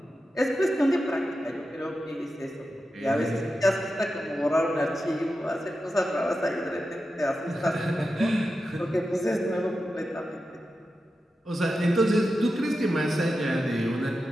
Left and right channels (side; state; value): both; normal; correlation 0.91